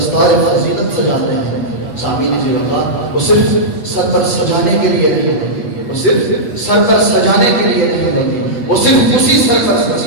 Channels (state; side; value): late; right; 8.0 ms